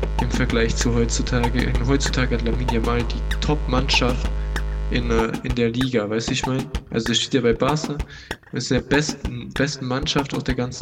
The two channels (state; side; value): identical; both; correlation 1.00